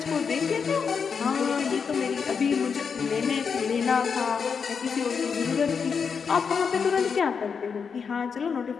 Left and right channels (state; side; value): quieter; right; 6.0 dB